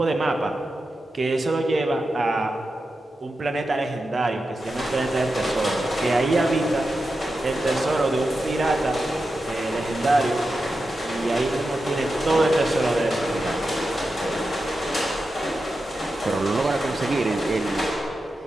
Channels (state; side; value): normal; both; correlation 0.90